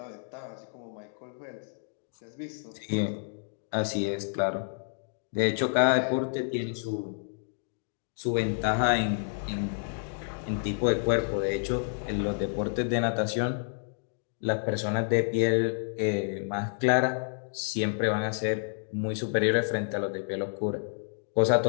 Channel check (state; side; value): silent; right; digital silence